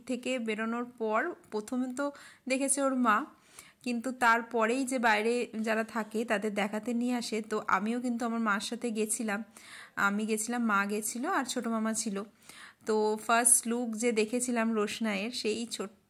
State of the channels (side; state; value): both; identical; correlation 1.00